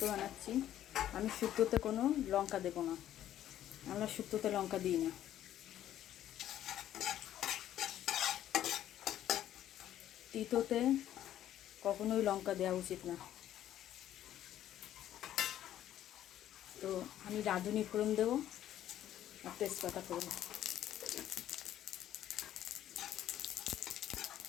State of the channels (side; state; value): right; quieter; 11.9 dB